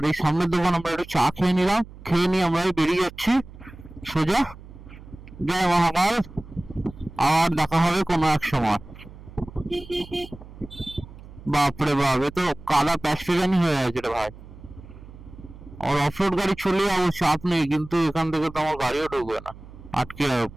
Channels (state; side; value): noise; right; hum, 18 dB below the sound